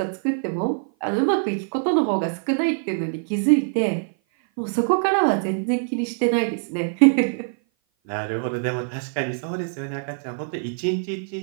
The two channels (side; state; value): left; silent; 56 dB below the other